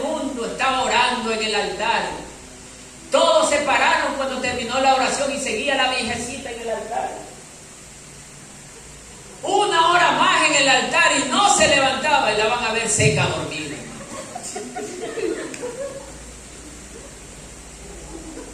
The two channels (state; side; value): identical; both; correlation 1.00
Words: estaba orando en el altar. Todos se pararon cuando terminó la oración y seguía la viejecita en el altar. 1 hora más en el altar y no se levantaba, y la van a ver seca, dormida.